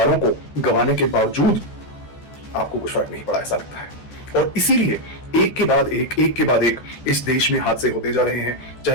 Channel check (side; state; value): right; late; 14 ms